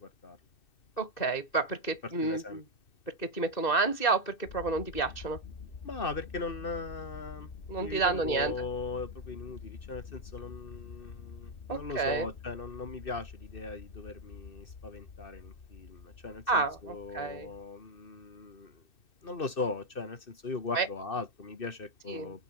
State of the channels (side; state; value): right; late; 2.6 ms